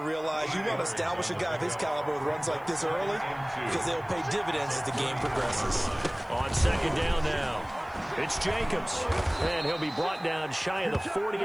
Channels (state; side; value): noise; left; hiss, 30 dB below the sound